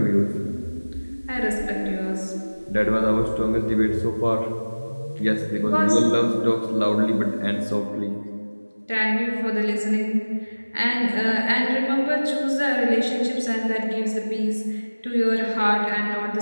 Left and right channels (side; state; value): both; inverted; correlation -1.00